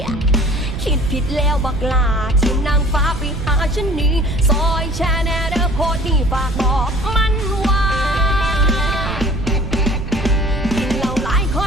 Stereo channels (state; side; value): noise; right; rumble, 7 dB below the sound